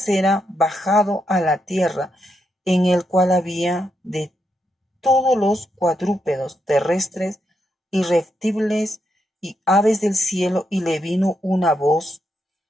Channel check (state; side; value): normal; both; correlation 0.81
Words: era bajado a la tierra, en el cual había de todos los cuadrúpedos terrestres y reptiles y aves del cielo. Y le vino una voz: